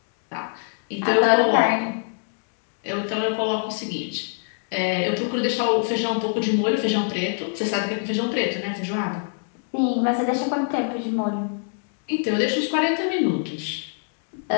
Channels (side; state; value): right; silent; digital silence